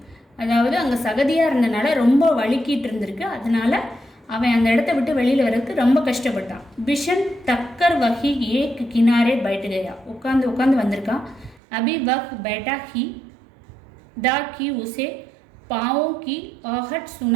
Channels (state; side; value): drops out; left; at 11.6 s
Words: அதாவது அங்கே சகதியாக இருந்தனால ரொம்ப வலிக்கிட்டு இருந்திருக்கு. அதனால அவன் அந்த இடத்த விட்டு வெளியில் வர்றதுக்கு ரொம்ப கஷ்டப்பட்டான். பிஷன் டக்கர் வகி ஏக் கினாரே பைட்டு கயா. உட்காந்து வந்திருக்கான். அபி வக் பேட்டா ஹி दा की उसे पाँवों की आहट